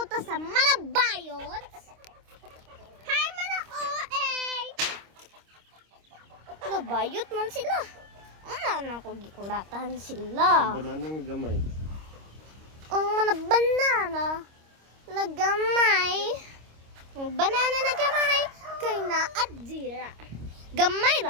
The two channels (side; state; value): left; late; 26 ms